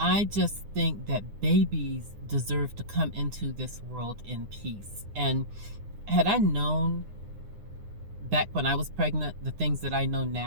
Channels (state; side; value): late; left; 9.8 ms